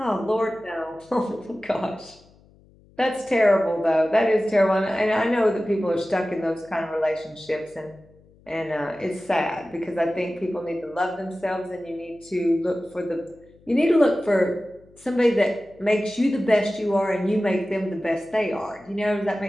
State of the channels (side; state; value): left; noise; hum, 28 dB below the sound